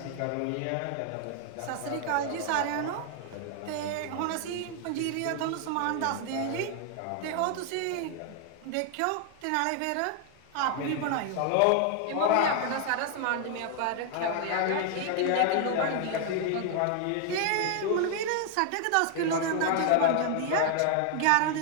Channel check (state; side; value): different; both; correlation 0.00